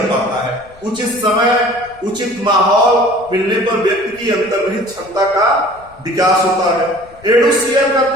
पाता है। उचित समय, उचित माहौल मिलने पर व्यक्ति की अंतर्निहित क्षमता का विकास होता है। एडुसियर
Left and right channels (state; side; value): noise; left; rumble, 26 dB below the sound